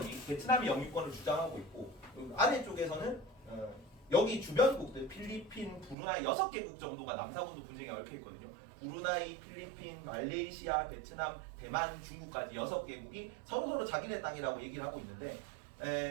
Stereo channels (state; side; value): drops out; left; at 6.0 s